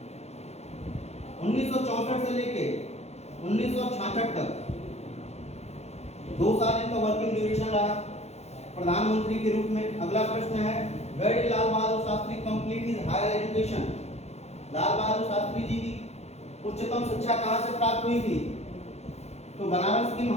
1964 से लेके 1966 तक 2 साल इनका वर्किंग ड्यूरेशन रहा प्रधानमंत्री के रूप में। अगला प्रश्न है, where did Lal Bahadur Shastri complete his higher education? Lal Bahadur Shastri ji की उच्चतम शिक्षा कहाँ से प्राप्त हुई थी? तो बनारस की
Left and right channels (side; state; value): right; late; 0.31 ms